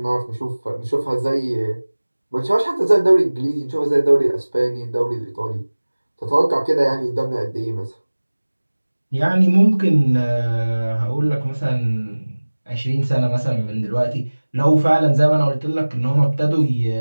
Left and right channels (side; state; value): both; inverted; correlation -1.00